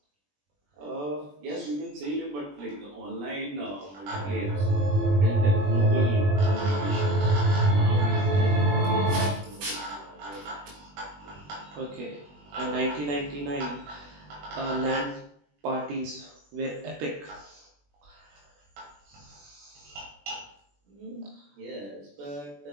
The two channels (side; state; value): left; late; 21 ms